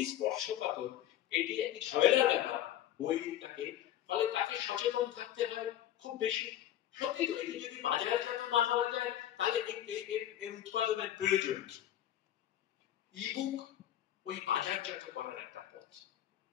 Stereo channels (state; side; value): quieter; right; 12.0 dB